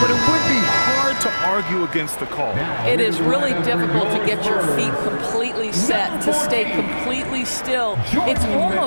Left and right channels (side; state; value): both; inverted; correlation -1.00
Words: it would be hard to argue against the call. It is really difficult to get your feet completely set, to stay completely still. It's